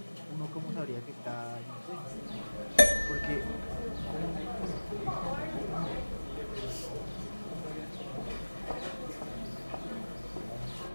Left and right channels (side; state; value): both; inverted; correlation -1.00